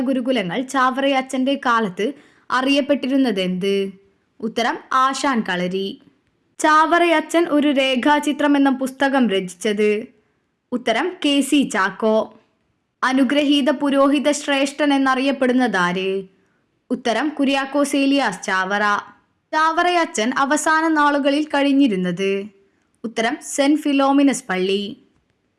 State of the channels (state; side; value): identical; both; correlation 1.00